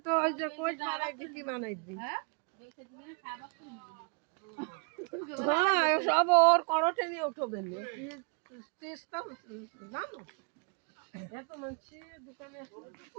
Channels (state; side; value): quieter; left; 35.4 dB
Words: তো ওই যে কোচ মারাই দিছি বানাই দি হ্যাঁ সব ওর করটে নিয়ে উঠবে চেষ্টা না এত মানুষ দোকানে